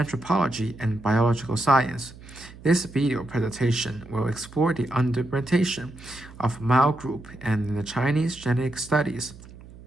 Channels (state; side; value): noise; right; hum, 19 dB below the sound